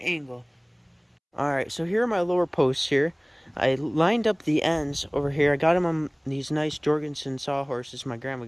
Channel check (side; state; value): both; identical; correlation 1.00